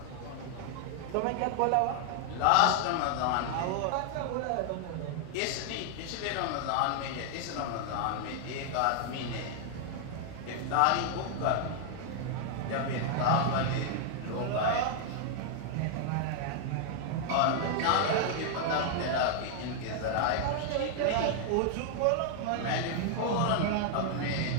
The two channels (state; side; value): different; both; correlation 0.00